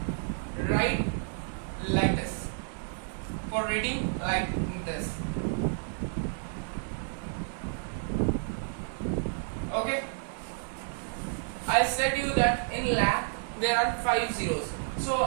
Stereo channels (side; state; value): left; silent; digital silence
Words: Write like this. For reading, like this. Okay. I said you that in lakh there are 5 zeros. So